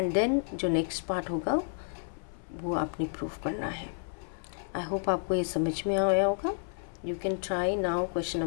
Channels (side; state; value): right; silent; 57 dB below the other